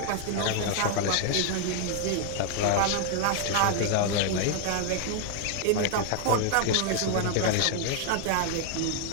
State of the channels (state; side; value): different; both; correlation 0.00